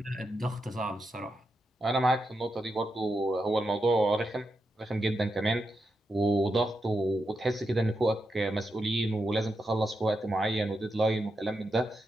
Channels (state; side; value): normal; both; correlation 0.86